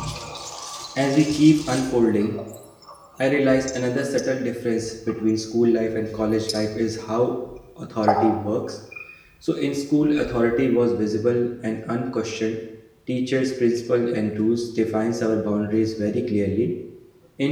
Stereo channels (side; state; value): both; identical; correlation 1.00